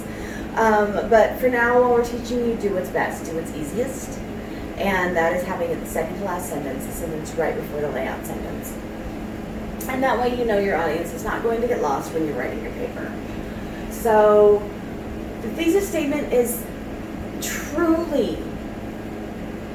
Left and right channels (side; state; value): both; identical; correlation 1.00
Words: But for now, while we're teaching you, do what's best, do what's easiest. And that is having it the second to last sentence, the sentence right before the layout sentence. And that way you know your audience is not going to get lost when you're writing your paper. So the thesis statement is truly